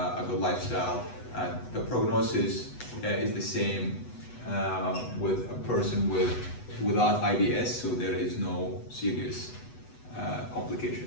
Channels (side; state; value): right; late; 8.1 ms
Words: good lifestyle. The prognosis is the same with a person without IBS, so there is no serious